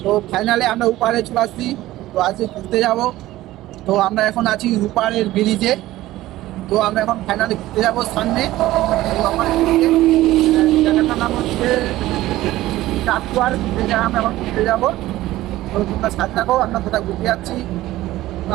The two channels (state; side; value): quieter; left; 16.1 dB